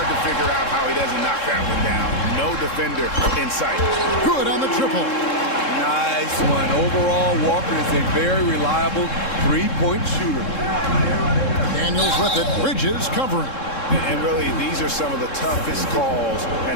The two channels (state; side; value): late; right; 3.7 ms